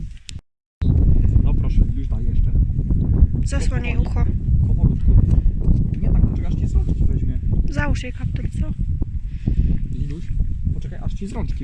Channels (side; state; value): both; identical; correlation 1.00